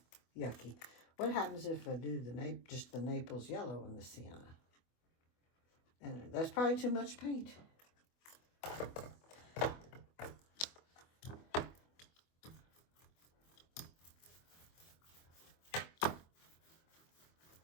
be yucky. What happens if I do just the Naples yellow in the sienna? And that's probably too much paint.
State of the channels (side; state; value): right; late; 24 ms